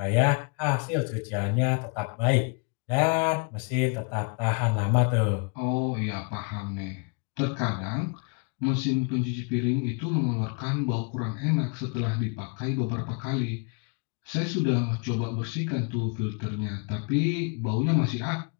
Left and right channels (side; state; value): right; quieter; 36.3 dB